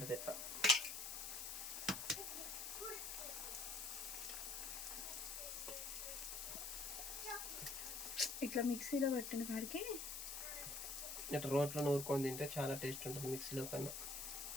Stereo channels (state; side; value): noise; left; hiss, 5 dB below the sound